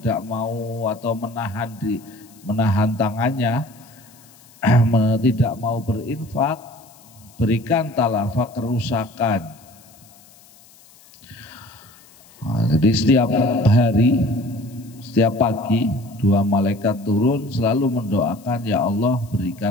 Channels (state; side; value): noise; left; hiss, 26 dB below the sound